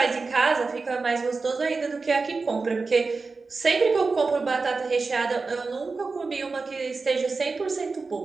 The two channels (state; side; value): quieter; left; 4.1 dB